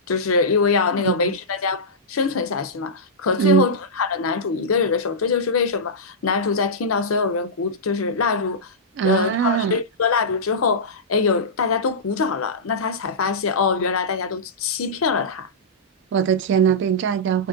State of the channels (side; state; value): both; normal; correlation -0.14